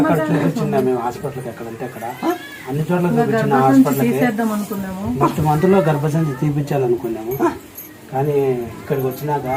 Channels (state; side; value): identical; both; correlation 1.00